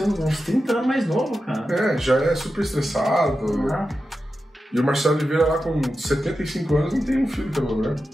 uns 30 anos mais novo, cara. Já é super estressado. E o Marcelo Oliveira lá com 75 anos não tem um filho pelo branco.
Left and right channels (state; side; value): normal; both; correlation 0.91